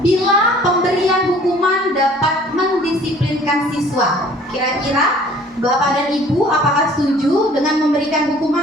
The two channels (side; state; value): both; normal; correlation 0.53